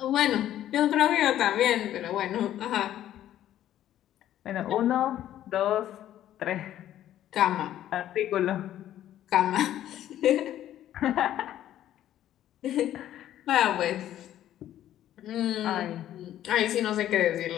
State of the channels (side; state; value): right; quieter; 12.1 dB